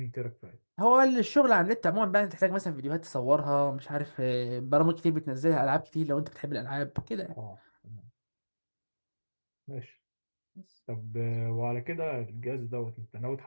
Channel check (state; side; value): inverted; both; correlation -1.00